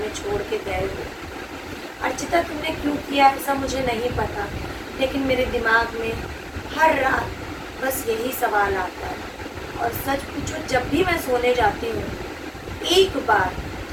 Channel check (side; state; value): both; identical; correlation 1.00